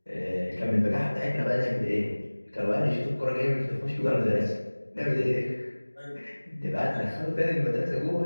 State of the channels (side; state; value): both; inverted; correlation -1.00